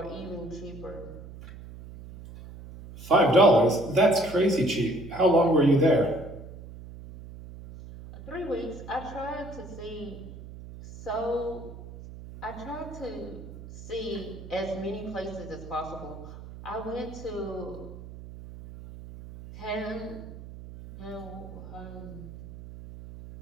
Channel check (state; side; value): noise; right; hum, 14 dB below the sound